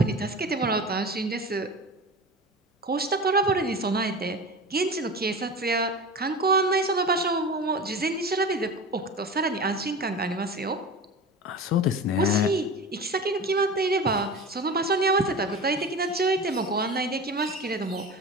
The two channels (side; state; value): both; normal; correlation 0.31